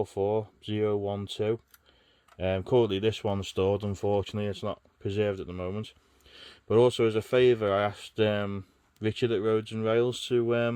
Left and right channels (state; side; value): identical; both; correlation 1.00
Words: Currently this one's stored. Unfortunately it's not preserved at the moment. But also as a favour, I asked Richard at Roads and Rails